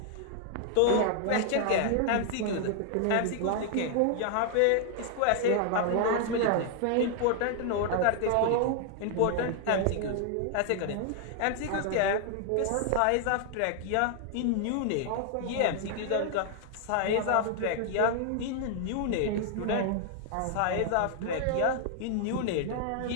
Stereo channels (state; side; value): different; both; correlation 0.00